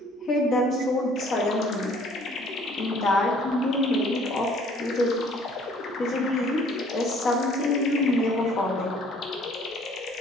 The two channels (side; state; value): both; normal; correlation 0.57